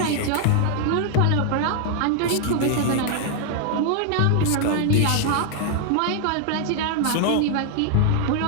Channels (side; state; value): both; different; correlation 0.00